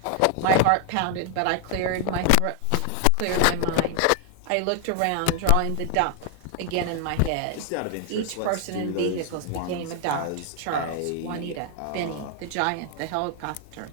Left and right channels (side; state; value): both; different; correlation 0.00